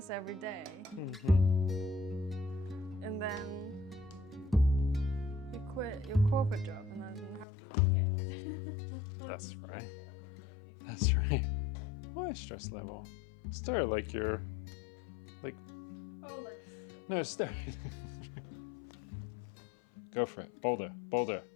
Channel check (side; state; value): right; drops out; at 7.5 s